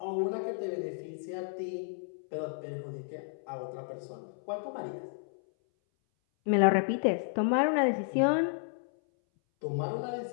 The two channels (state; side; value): silent; right; 56 dB below the other